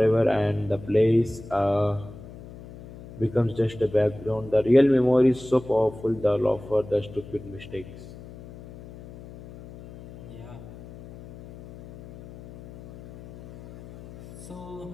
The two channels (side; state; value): left; noise; hum, 17 dB below the sound